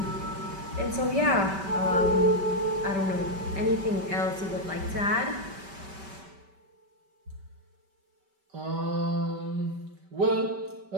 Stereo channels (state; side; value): late; left; 5.2 ms